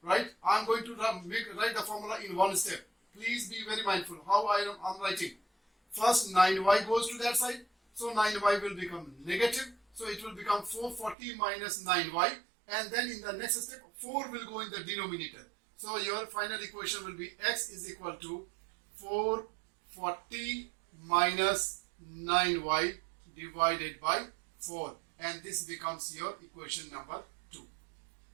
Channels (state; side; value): drops out; left; at 11.2 s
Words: right? I am going to write the formula in one step. Please be very mindful how I am writing. First 9Y goes to that side. So 9Y will become negative. So it will become 440 minus 9Y. And then in the next step, 4 will go in the denominator. So your final equation will be X is equal to 440 minus 9Y divided by 4. And this becomes your equation number 2.